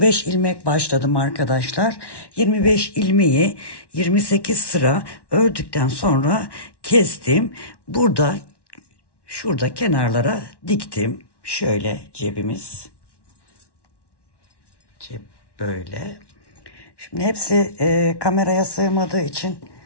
ilmek başladım arkadaşlar. 25 ilmeği 28 sıra ördükten sonra kestim. Şurada kenarlara diktim. Şöyle cebimiz. Cep böyle. Şimdi hepsi kameraya sığmadığı için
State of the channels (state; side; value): late; right; 1.1 ms